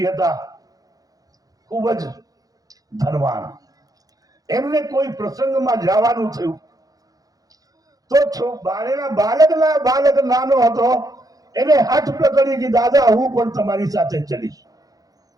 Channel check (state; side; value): late; left; 0.18 ms